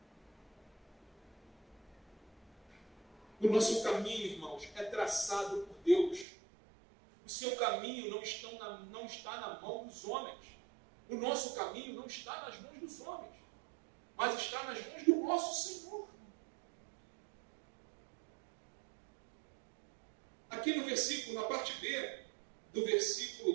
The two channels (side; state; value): left; drops out; at 6.2 s